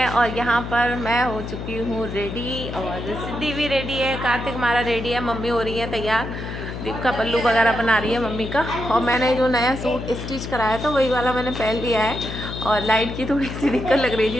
और यहाँ पर मैं हो चुकी हूँ रेडी और सिद्धि भी रेडी है, कार्तिक हमारा रेडी है, मम्मी हो रही है तैयार, दीप का पल्लू वगैरह बना रही है मम्मी का। और मैंने जो नया सूट स्टिच कराया था वही वाला मैंने पहन लिया है और लाइट की थोड़ी सी दिक्कत लग रही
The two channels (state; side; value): noise; left; hum, 7 dB below the sound